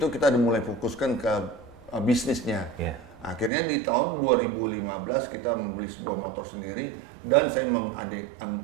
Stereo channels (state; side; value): drops out; left; at 3.5 s